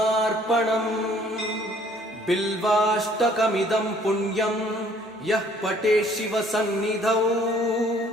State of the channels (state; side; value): normal; both; correlation 0.59